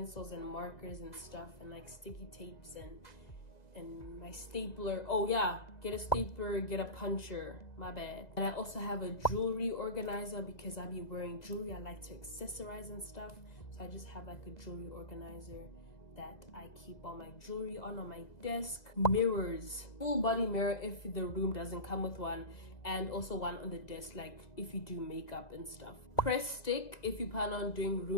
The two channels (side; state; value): right; late; 2.0 ms